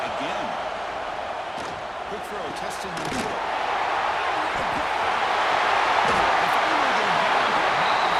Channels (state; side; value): identical; both; correlation 1.00